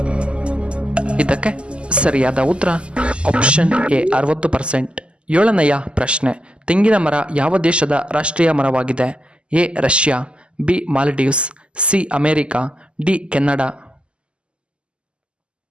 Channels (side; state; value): left; late; 0.052 ms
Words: ಇದಕ್ಕೆ ಸರಿಯಾದ ಉತ್ತರ ಆಪ್ಷನ್ ಎ 60%. ಏಳನೆಯ ಪ್ರಶ್ನೆ, ತೆಂಗಿನ ಮರ ಯಾವ ದೇಶದ ರಾಷ್ಟ್ರೀಯ ಮರವಾಗಿದೆ? A Russia, B Maldives, C America, D Canada.